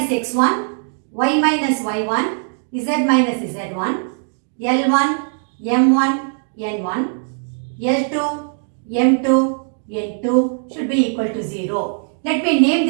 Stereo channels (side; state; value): left; silent; digital silence